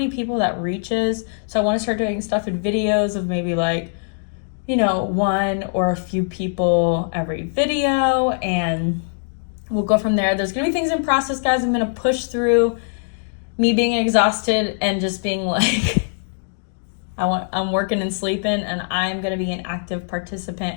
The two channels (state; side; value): silent; right; digital silence